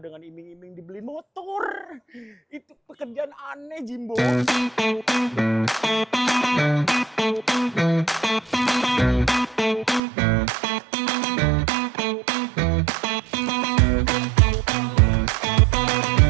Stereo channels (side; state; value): left; drops out; at 10.0 s